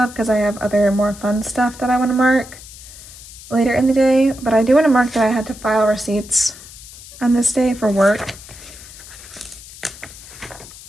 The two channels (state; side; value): noise; left; hiss, 17 dB below the sound